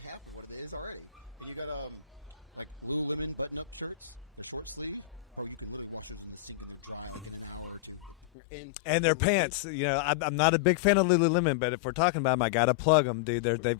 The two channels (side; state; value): right; drops out; at 8.3 s